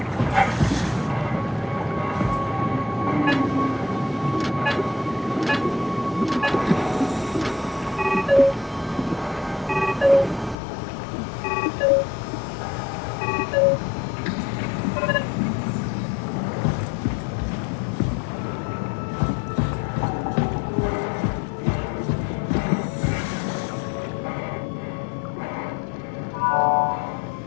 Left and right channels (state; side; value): drops out; right; at 10.6 s